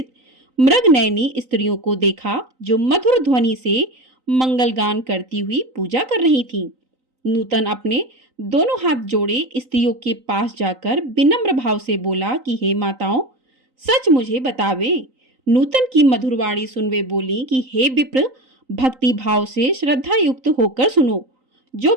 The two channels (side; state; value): left; late; 3.9 ms